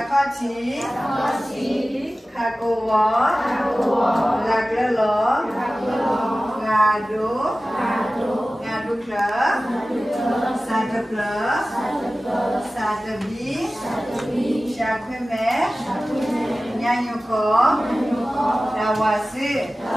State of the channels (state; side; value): normal; both; correlation 0.96